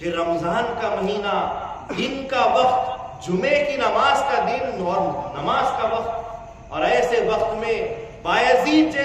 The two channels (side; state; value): both; identical; correlation 1.00